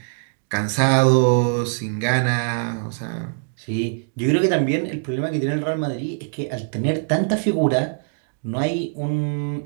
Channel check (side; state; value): left; silent; digital silence